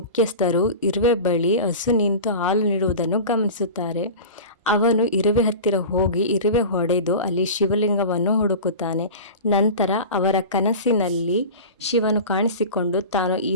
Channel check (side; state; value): both; inverted; correlation -0.32